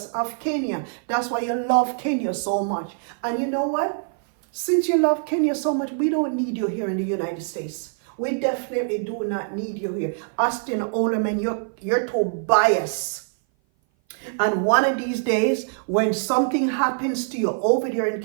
of Kenya. That's why you love Kenya so much. And you know what? Since you love Kenya so much, we don't need you here in the United States. We definitely do not need you here. Austin Oleman, you're too biased. And one of these days, when something happens to you over there in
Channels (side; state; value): left; silent; 57 dB below the other